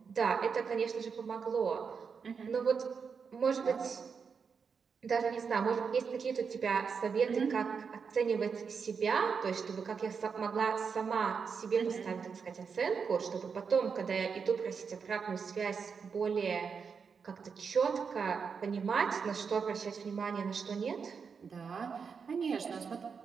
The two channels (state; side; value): quieter; left; 5.9 dB